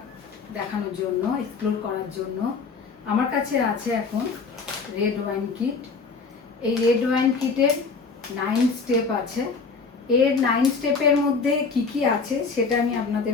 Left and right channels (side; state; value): right; quieter; 4.7 dB